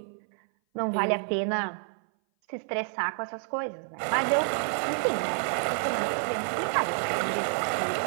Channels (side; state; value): left; silent; 58 dB below the other